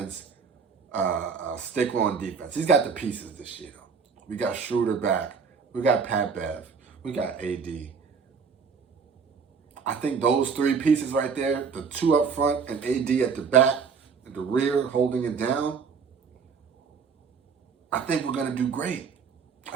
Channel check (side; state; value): left; quieter; 5.8 dB